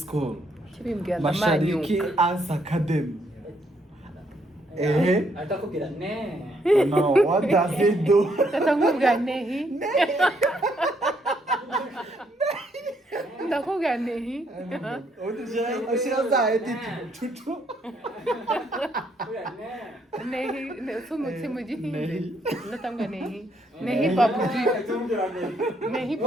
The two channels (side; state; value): both; normal; correlation 0.72